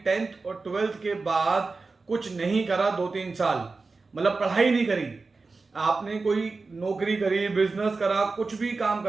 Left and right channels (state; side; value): quieter; left; 4.0 dB